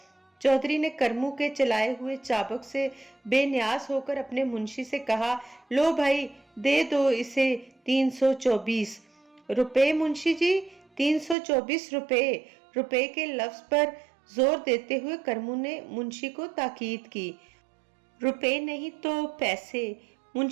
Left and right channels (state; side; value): drops out; left; at 11.4 s